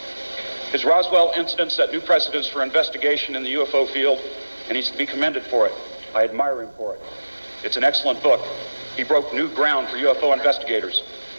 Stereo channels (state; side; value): inverted; both; correlation -1.00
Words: His Roswell incident set new precedents for investigation in the UFO field, and he's to be commended for it. I admire him for it. It's an excellent book. He broke new ground for UFO investigators.